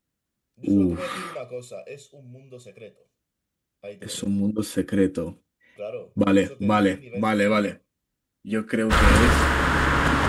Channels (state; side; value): identical; both; correlation 1.00